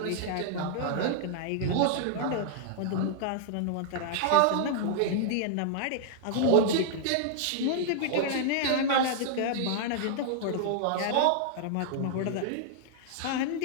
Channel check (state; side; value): different; both; correlation -0.01